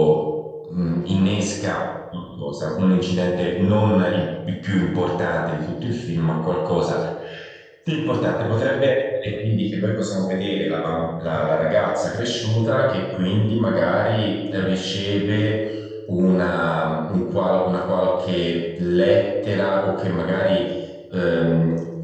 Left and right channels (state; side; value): identical; both; correlation 1.00